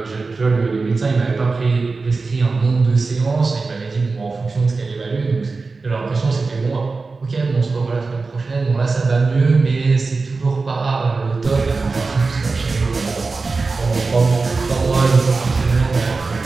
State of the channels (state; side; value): quieter; left; 4.0 dB